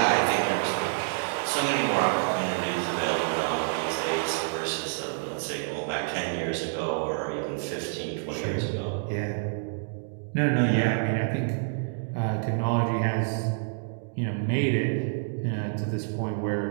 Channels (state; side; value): silent; left; digital silence